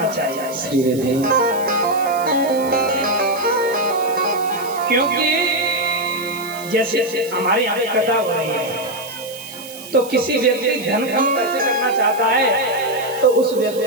चाहिए। क्योंकि जैसे हमारे यहाँ पे कथा हो रही है, तो किसी व्यक्ति धन कम खर्च करना चाहता है तो उस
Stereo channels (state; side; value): noise; right; hiss, 15 dB below the sound